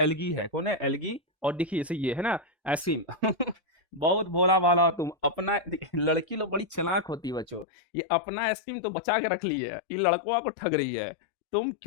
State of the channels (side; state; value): right; drops out; at 7.7 s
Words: है। कौन है, एल्गी। और देखिए इसे ये है ना आइसक्रीम। बहुत भोला भाला तुम अपना, लड़की लोग बड़ी चालाक होती है बच्चों, ये अपना आइसक्रीम तो बचा के रख ली है, ये लड़कों को ठग रही है। तुम